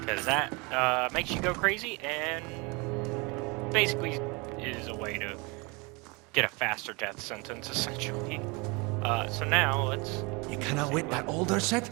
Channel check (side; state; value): left; quieter; 28.1 dB